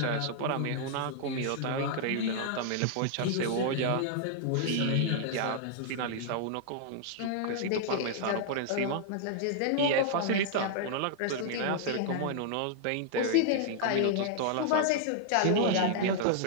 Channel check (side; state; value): both; different; correlation -0.01